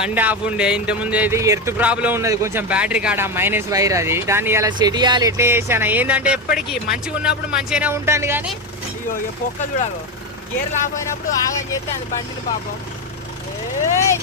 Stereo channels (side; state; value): both; normal; correlation 0.14